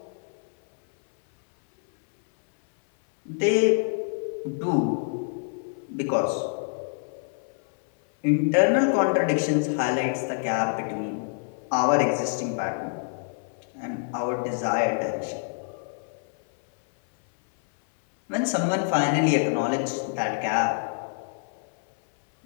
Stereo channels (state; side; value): silent; right; 58 dB below the other